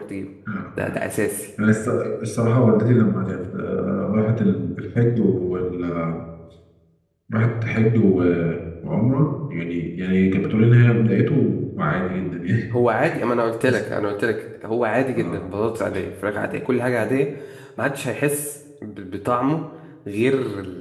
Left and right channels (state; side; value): identical; both; correlation 1.00